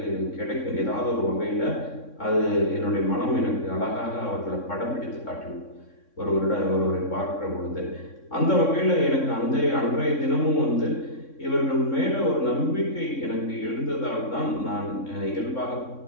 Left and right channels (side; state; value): right; late; 3.6 ms